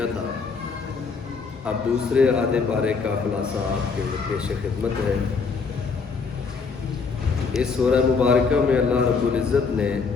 تھا. اب دوسرے آدھے پارے کا خلاصہ آپ کے پیش خدمت ہے. اس سورہ مبارکہ میں اللہ رب العزت نے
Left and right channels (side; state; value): right; quieter; 5.0 dB